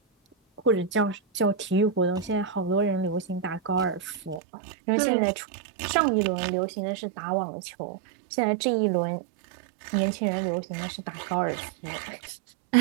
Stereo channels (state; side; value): drops out; left; at 4.4 s